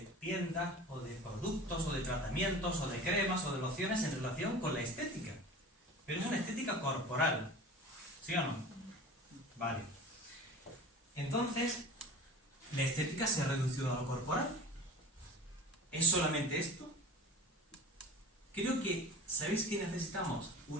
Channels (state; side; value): normal; both; correlation 0.37